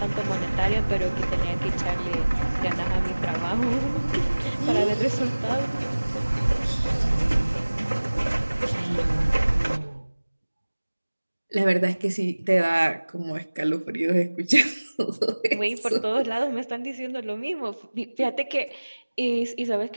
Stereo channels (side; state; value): both; inverted; correlation -1.00